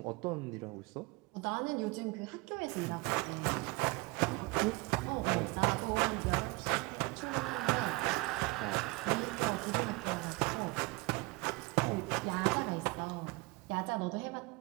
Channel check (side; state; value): left; quieter; 24.8 dB